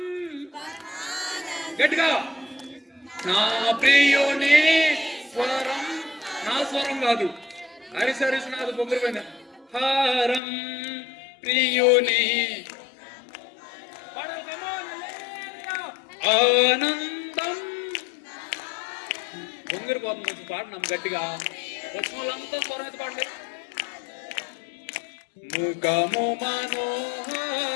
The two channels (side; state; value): right; drops out; at 10.4 s